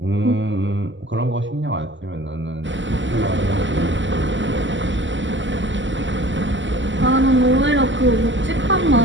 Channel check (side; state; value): left; late; 0.54 ms